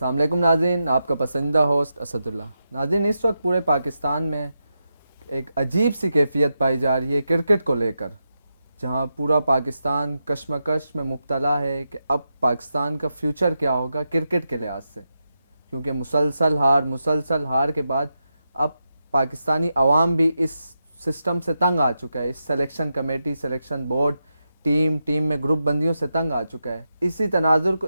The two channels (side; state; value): both; inverted; correlation -0.87